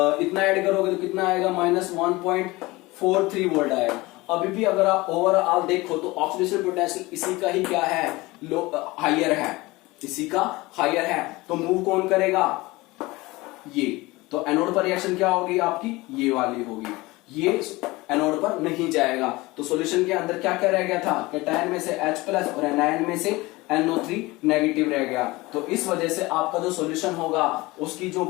ऐड करोगे तो कितना आएगा, -1.43 वोल्ट आएगा। अभी भी अगर आप ओवरऑल देखो तो ऑक्सीडेशन पोटेंशियल इसी का ही क्या है, हायर है, इसी का हायर है। तो मूव कौन करेगा, ये। तो एनोड पर रिएक्शन क्या होगी आपकी, ये वाली होगी, ये एनोड पर नहीं जाएगा। तो सॉल्यूशन के अंदर क्या क्या रह गया था, कैटायन में से H+ और एनायन में से NO3 नेगेटिव रह गया। तो इस वजह से आपका जो सॉल्यूशन होगा उसकी जो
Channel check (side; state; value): right; quieter; 21.3 dB